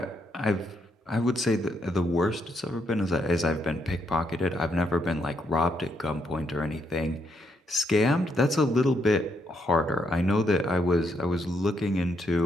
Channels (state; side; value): normal; both; correlation 0.76